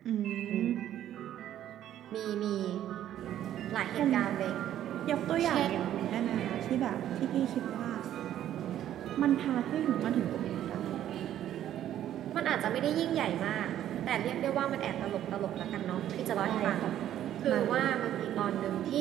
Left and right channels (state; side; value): quieter; left; 11.6 dB